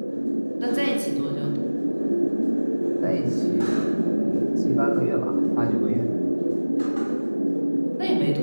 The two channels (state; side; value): inverted; both; correlation -1.00